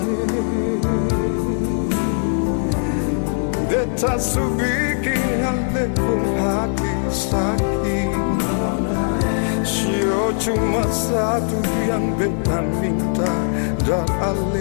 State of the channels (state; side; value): silent; right; digital silence